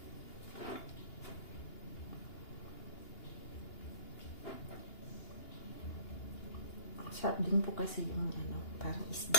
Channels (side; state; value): right; late; 2.8 ms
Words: Sarap din po kasi yung parang isda.